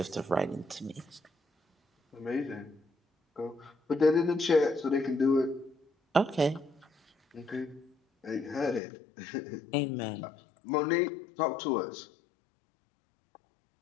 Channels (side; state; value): right; drops out; at 8.8 s